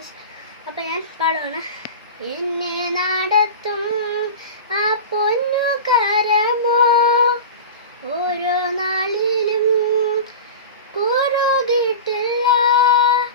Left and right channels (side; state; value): both; inverted; correlation -0.30